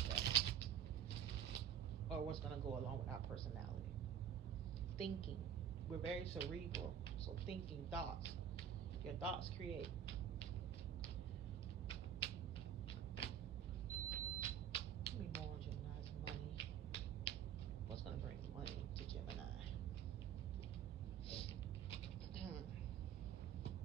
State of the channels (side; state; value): left; quieter; 9.3 dB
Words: or what's going to go along with our personality. Thinking, we're very cerebral, so thinking, thoughts, your thoughts create. Give me more on Gemini's money. What's going to bring money to Gemini?